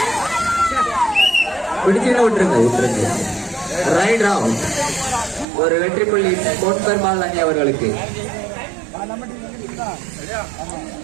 பிடிச்சுன்னு விட்டுருங்க. Right round. ஒரு வெற்றி புள்ளி பொன்பெருமாள் அணி அவர்களுக்கு.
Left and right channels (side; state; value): left; drops out; at 5.5 s